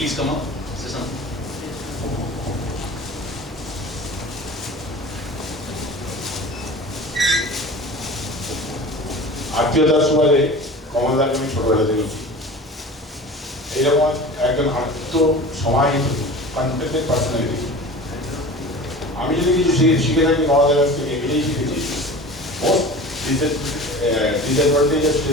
come up? Say something. আত্মীয়তার সুবাদে কমলদাকে আমি ছোটবেলা দেখেছি। এইরকম একজন আত্ম সমাহিত confident personality. আমি যদি কিছু শিখে থাকি কমলদার কাছ থেকে এটাই শিখেছি, মোস্ট ডিসঅ্যাডভান্টেজের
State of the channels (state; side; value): normal; both; correlation 0.37